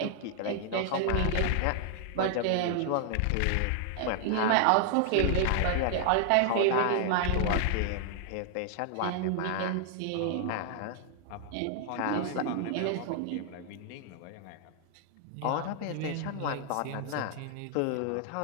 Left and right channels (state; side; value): different; both; correlation 0.00